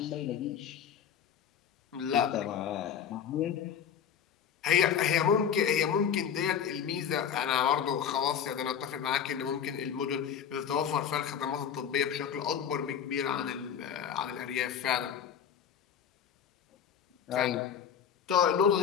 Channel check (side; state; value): right; quieter; 8.2 dB